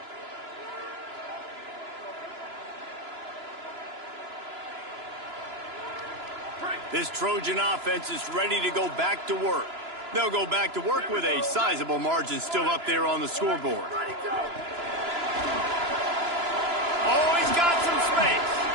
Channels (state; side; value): late; left; 2.9 ms